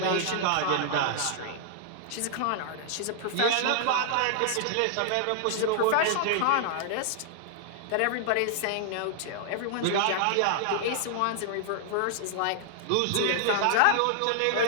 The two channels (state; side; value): different; both; correlation -0.01